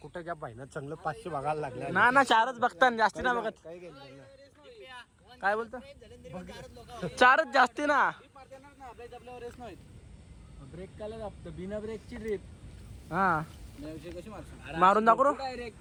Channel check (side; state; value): both; identical; correlation 1.00